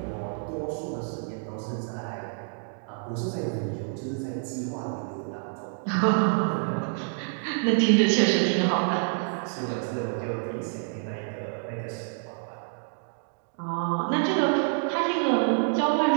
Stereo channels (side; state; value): left; silent; 60 dB below the other